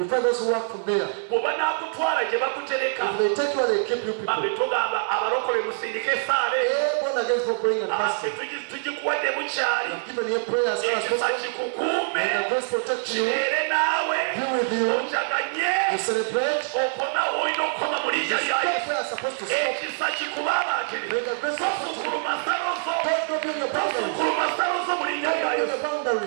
find those who work from there. Bwe banaakutwala gye bakutereka, If they take you and they keep you people, bambe togamba abalokole musindike esaale. born again for praying and fasting. Tugikuwadde bukyali. Given your prayers as Ekisa possible, kikukuume, and the grace protect you, kibeere naawe. be with you, Ojaganye you celebrate, okoma olina okukoma mu linnya lya stop Yesu. where you're supposed to stop. Ekisa kikubabaatire. May the grace protect you. Tosukuluma nsalo zo. Don't build your boundaries. Tosukuluma nsalo zo mu linnya lya Don't build Yesu. your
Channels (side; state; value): left; silent; 59 dB below the other